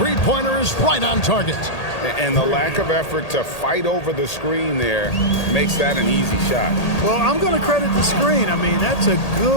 is right on target. And the lack of effort to fight over the screen there makes that an easy shot. Well, I'm going to credit the screen. I mean, that's a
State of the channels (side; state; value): right; late; 1.8 ms